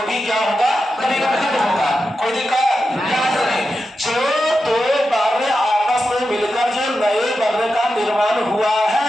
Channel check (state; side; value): normal; both; correlation 0.90